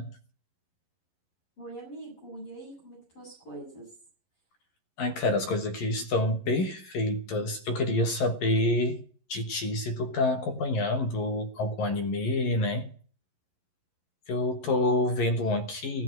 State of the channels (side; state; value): right; late; 11 ms